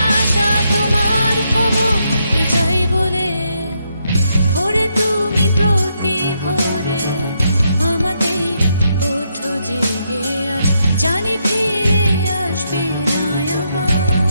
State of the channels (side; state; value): both; inverted; correlation -0.79